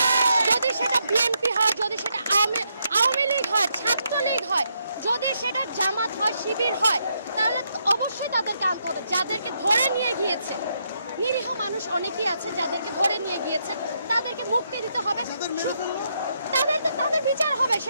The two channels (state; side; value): inverted; both; correlation -0.78